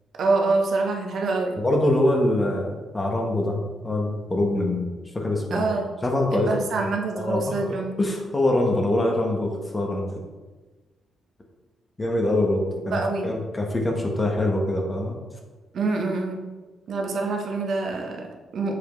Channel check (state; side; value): normal; both; correlation 0.81